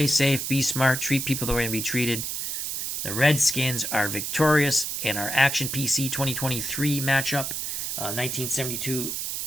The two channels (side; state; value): right; noise; hiss, 3 dB below the sound